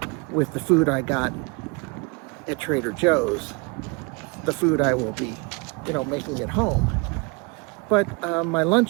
with the food I got at Trader Joe's, the food I will be, making at home. But my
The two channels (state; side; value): quieter; left; 29.5 dB